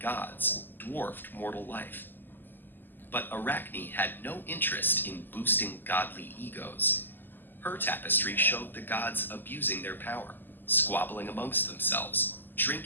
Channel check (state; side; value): late; right; 0.091 ms